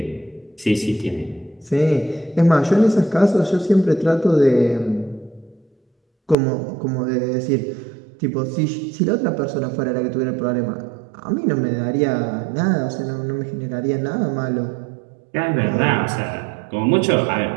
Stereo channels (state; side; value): drops out; left; at 6.4 s